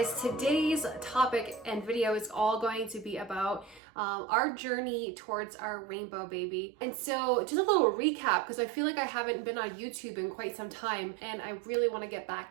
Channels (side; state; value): left; drops out; at 3.8 s